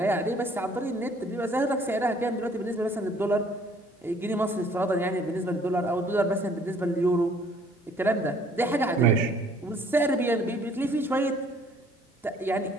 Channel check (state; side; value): normal; both; correlation 0.58